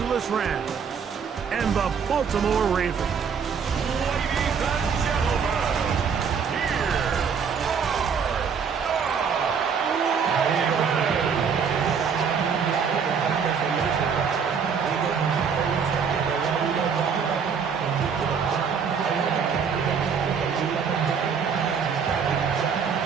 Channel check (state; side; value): quieter; left; 6.4 dB